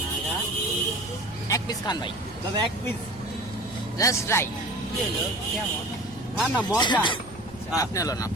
এক পিস খান ভাই দাদা এক পিস জাস্ট ট্রাই না না মজা আপনি হলো না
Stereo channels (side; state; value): right; noise; rumble, 19 dB below the sound